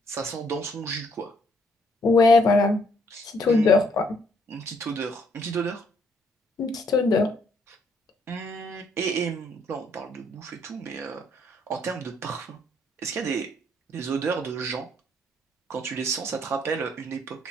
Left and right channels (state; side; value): normal; both; correlation 0.69